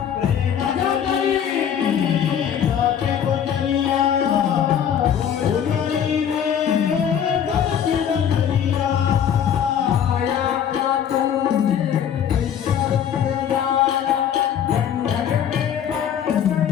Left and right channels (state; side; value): quieter; right; 8.8 dB